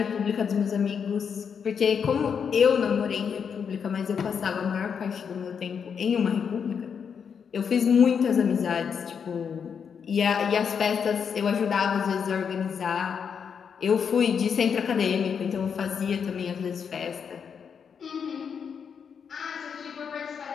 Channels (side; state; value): right; quieter; 6.9 dB